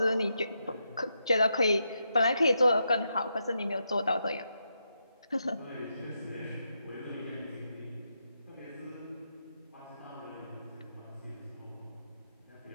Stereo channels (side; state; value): both; inverted; correlation -0.83